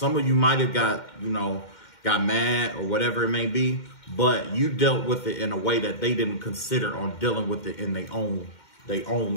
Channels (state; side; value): late; right; 2.1 ms